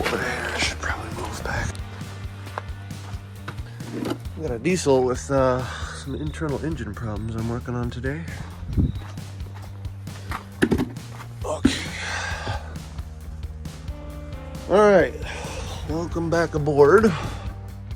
there. I should probably move back. I got a diesel with some internal engine problems I'm working on today. Okay. All right, welcome back aboard.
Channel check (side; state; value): both; identical; correlation 1.00